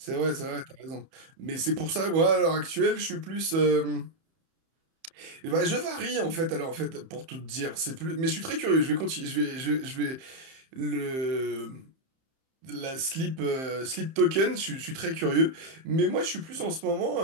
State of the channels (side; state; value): left; late; 30 ms